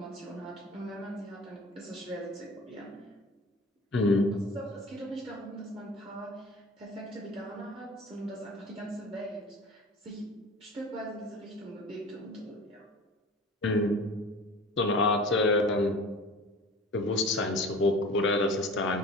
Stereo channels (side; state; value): both; normal; correlation 0.39